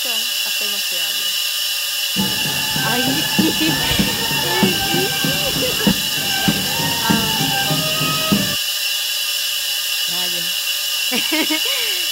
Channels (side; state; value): both; identical; correlation 1.00